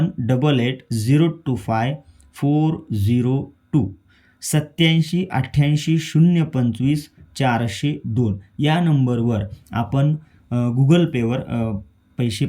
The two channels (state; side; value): identical; both; correlation 1.00